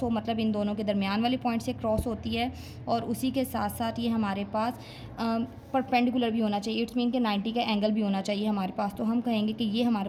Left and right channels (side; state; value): both; identical; correlation 1.00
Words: हो, मतलब इन दोनों के दरमियान वाले पॉइंट से क्रॉस होती है, और उसी के साथ साथ ये हमारे पास परपेंडिकुलर भी होना चाहिए। इट्स मीन कि 90 का एंगल भी होना चाहिए हमारे पास। तो हम कहेंगे कि ये